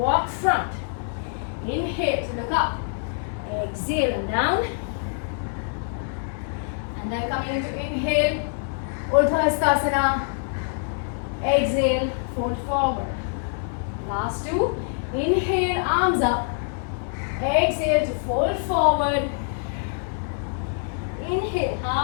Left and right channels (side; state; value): right; silent; 62 dB below the other